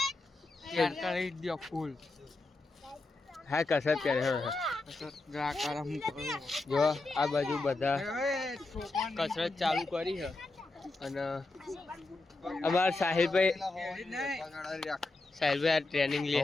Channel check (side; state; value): right; quieter; 3.2 dB